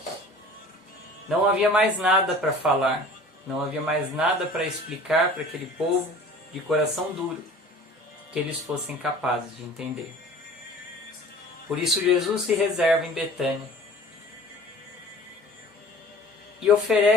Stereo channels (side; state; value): both; normal; correlation 0.46